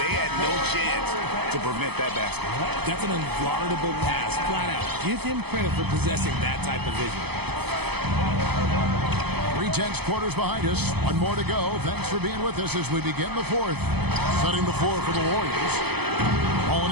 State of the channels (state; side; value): late; left; 0.98 ms